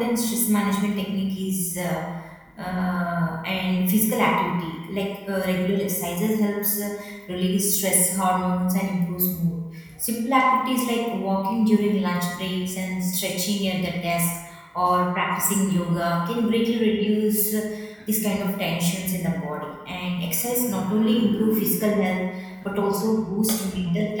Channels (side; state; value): both; identical; correlation 1.00